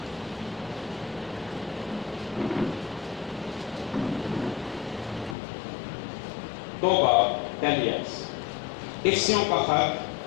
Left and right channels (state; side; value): drops out; right; at 5.4 s